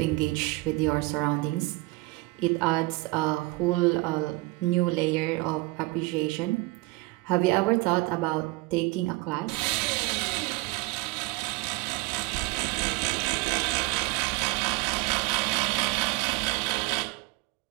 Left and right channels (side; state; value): left; quieter; 22.2 dB